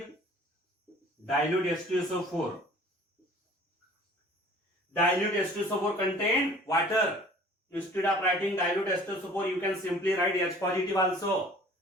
Dilute H2SO4. Dilute H2SO4 contain water. Instead of writing dilute H2SO4, you can simply write H positive also.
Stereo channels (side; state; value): both; normal; correlation 0.49